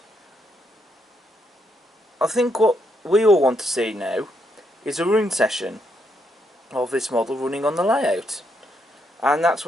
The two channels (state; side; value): normal; both; correlation 0.77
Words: I think what we all want to see now is a run session of this model running on the layout, and that's